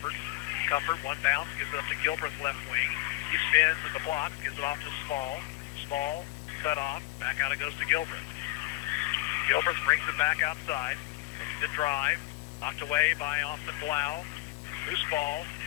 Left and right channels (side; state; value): right; quieter; 19.0 dB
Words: Comfort, one bounce, gives it up to Gilbreth left wing. He spins at the block, gives it off to Small. Small, cut off. Back out it goes to Gilbreth. Gilbreth brings it back outside. Looks to drive. Knocked away by Austin Blau. Loose ball.